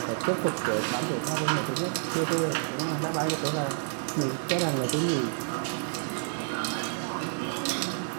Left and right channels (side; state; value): left; silent; digital silence